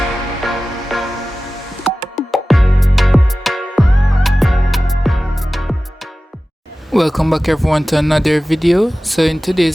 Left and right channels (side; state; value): both; normal; correlation 0.96